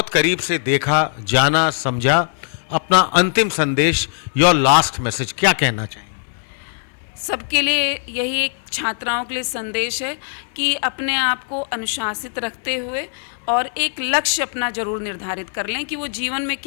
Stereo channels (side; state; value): right; silent; 65 dB below the other